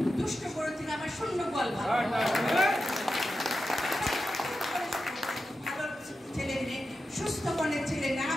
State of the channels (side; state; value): both; normal; correlation 0.91